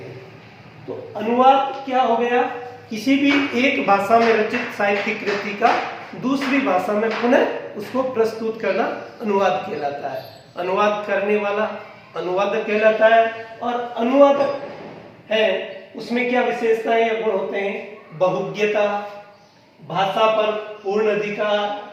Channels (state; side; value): identical; both; correlation 1.00